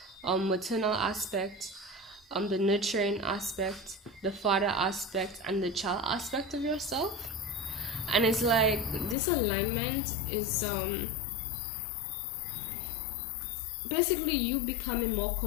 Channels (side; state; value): right; drops out; at 9.2 s